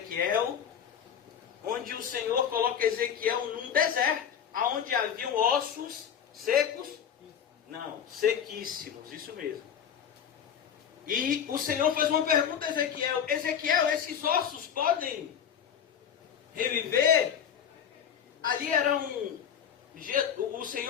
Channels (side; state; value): right; quieter; 8.4 dB